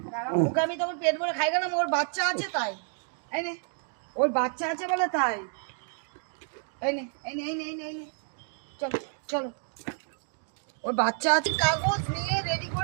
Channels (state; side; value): silent; left; 58 dB below the other